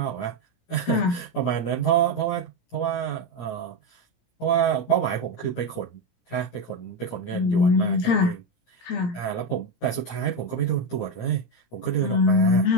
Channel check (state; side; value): late; right; 17 ms